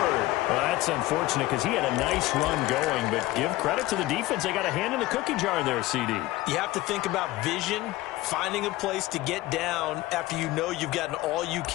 Well, that's unfortunate because he had a nice run going, but give credit to the defense. They got a hand in the cookie jar there, CD. You have to think about vision, finding a place to get down after you know you've gotten all you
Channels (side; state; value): right; quieter; 17.7 dB